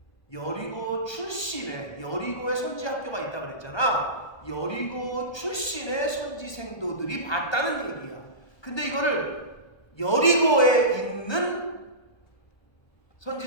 여리고 출신의 여리고에 선지 학교가 있다 그랬잖아. 여리고 출신의 선지 생도들이 봤다는 얘기야. 근데 이거를 여리고에 있는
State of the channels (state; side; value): late; right; 1.2 ms